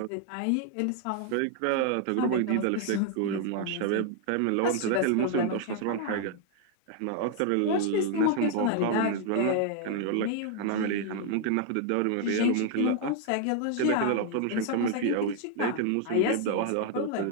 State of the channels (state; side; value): different; both; correlation 0.00